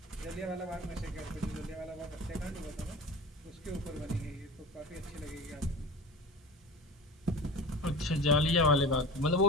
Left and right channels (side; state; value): both; normal; correlation 0.35